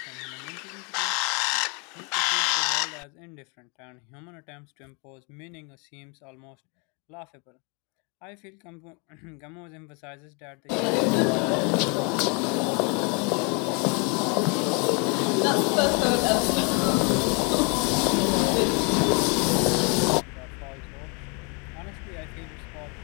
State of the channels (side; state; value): right; quieter; 34.0 dB